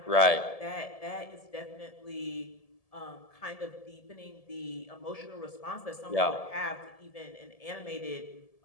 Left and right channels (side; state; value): right; late; 1.7 ms